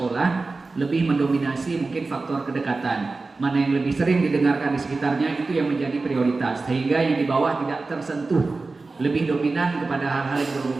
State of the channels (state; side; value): quieter; left; 3.7 dB